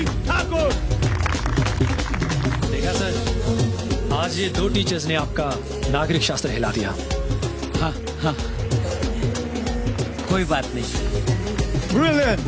आज ये 2 teachers ने आपका नागरिक शास्त्र हिला दिया। हाँ हाँ, कोई बात नहीं। Brilliant,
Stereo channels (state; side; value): identical; both; correlation 1.00